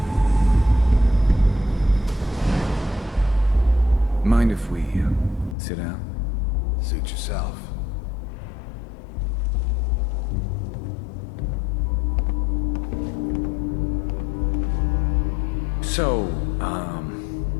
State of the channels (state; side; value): drops out; right; at 5.6 s